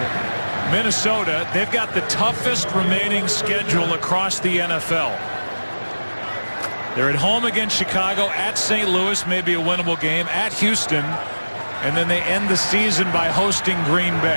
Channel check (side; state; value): both; inverted; correlation -1.00